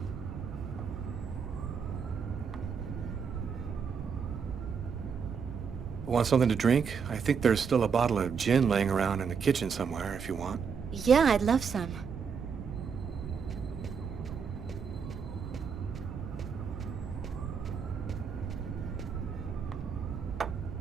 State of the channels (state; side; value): quieter; left; 6.2 dB